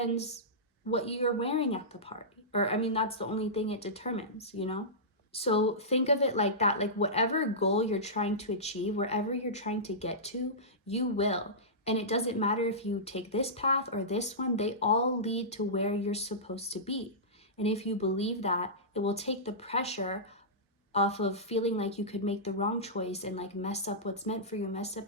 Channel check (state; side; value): normal; both; correlation -0.17